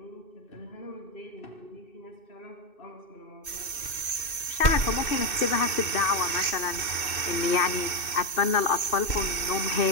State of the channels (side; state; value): right; late; 2.6 ms